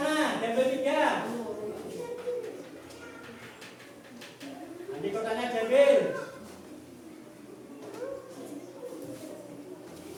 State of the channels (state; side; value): identical; both; correlation 1.00